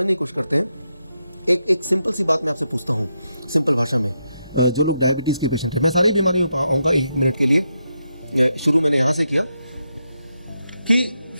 की कोशिश करते हैं। एक सिंपल सी बात मैं आपसे पूछता हूँ, सिंपल भाषा में। जो लोग डायबिटीज़ के पेशेंट हैं, मैं सारी बीमारियों पर आऊँगा एक मिनट के लिए। शुरू मैंने यहाँ से किया कि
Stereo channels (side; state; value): both; inverted; correlation -0.84